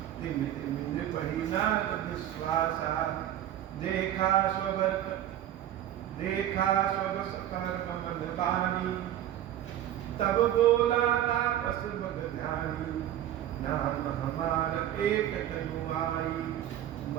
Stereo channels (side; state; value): left; quieter; 11.9 dB